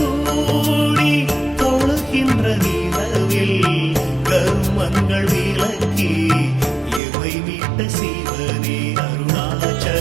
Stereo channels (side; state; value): left; drops out; at 7.0 s